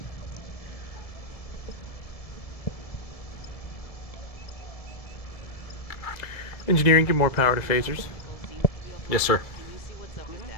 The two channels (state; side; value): late; right; 1.7 ms